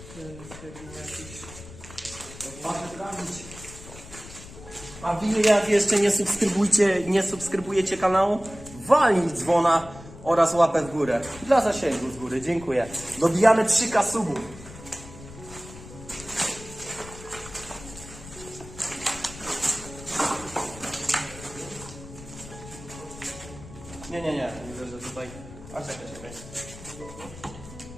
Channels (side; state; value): left; noise; rumble, 16 dB below the sound